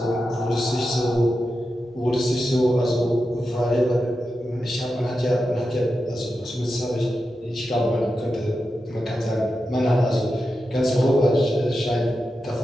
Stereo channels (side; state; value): both; normal; correlation 0.90